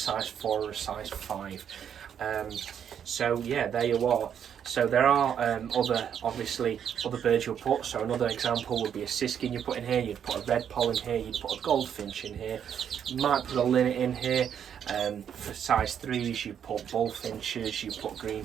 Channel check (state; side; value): quieter; left; 8.6 dB